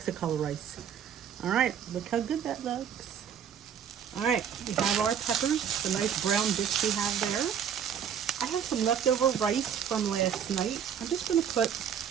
rice. All right, look how good that looks. All right, we have our peppers, the nice brown bits we have there. I have some leftover rice from last night. I'm just going to put,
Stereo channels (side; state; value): left; quieter; 8.3 dB